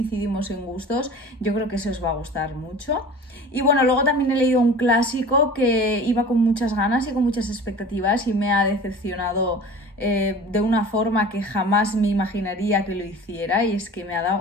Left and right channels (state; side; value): normal; both; correlation 0.40